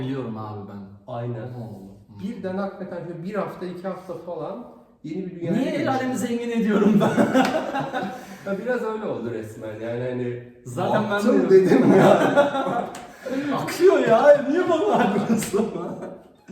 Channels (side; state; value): both; identical; correlation 1.00